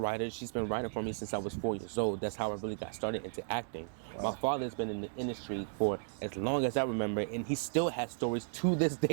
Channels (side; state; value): left; silent; digital silence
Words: She's been writing for me since I was 4 years old. That's how I really got started into acting. Wow. My father's been in the industry for as long as I remember, and he still has stories to this